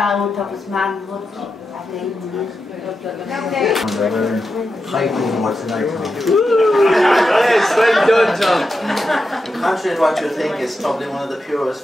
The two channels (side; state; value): both; normal; correlation 0.88